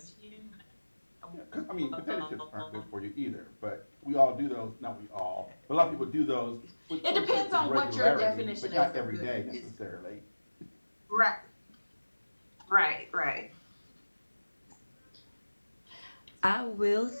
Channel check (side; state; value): both; inverted; correlation -1.00